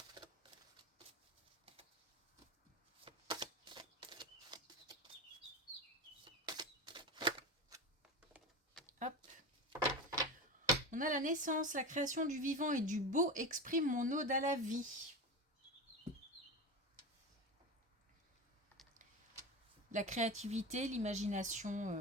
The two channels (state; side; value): normal; both; correlation 0.24